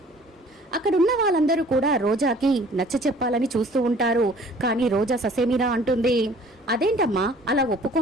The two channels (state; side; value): normal; both; correlation 0.52